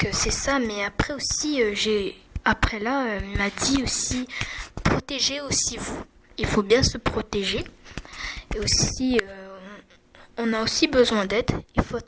c'est ça, mais après aussi, il m'a dit aussi, protégez aussi vous. Il faut bien se protéger. Et aussi, on a aussi besoin d'aide, il faut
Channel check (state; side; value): identical; both; correlation 1.00